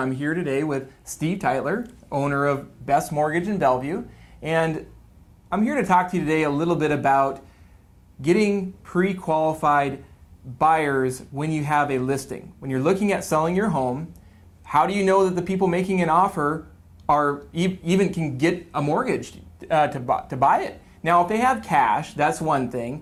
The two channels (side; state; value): both; identical; correlation 1.00